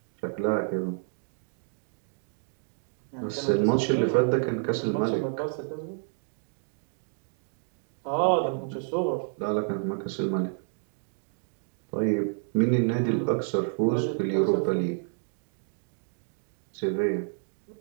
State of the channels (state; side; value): silent; left; 58 dB below the other